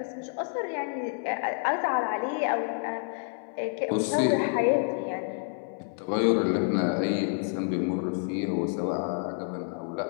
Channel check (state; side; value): silent; right; 59 dB below the other